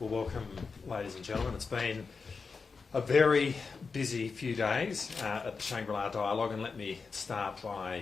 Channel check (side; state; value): right; quieter; 4.9 dB